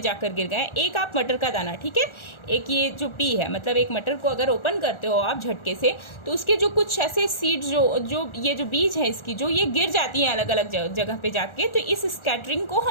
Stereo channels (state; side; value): late; right; 1.4 ms